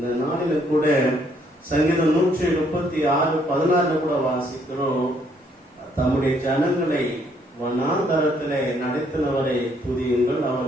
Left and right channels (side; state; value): both; normal; correlation 0.68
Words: நாளில் கூட சங்கீதம் 136:16 கூட வாசிக்கிறோம், தம்முடைய ஜனங்களை வனாந்தரத்திலே நடத்தினவரை துதியுங்கள்,